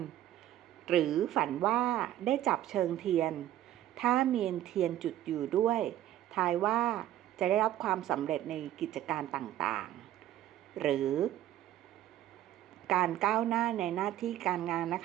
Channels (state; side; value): quieter; left; 12.9 dB